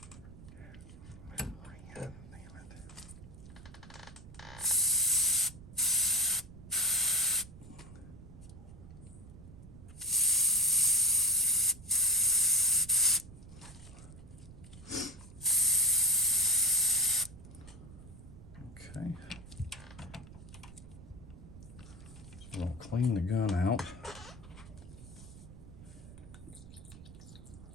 Okay. So I'll clean the gun out.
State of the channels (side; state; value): right; noise; rumble, 17 dB below the sound